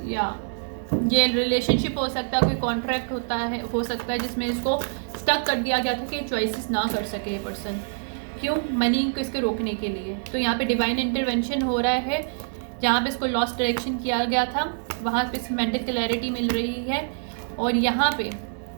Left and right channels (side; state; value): left; silent; digital silence